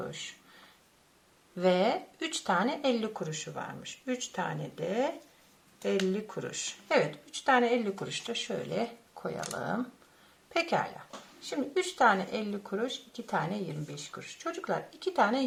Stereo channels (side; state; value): both; identical; correlation 1.00